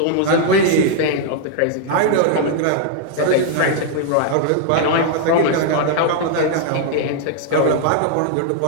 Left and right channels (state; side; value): different; both; correlation -0.01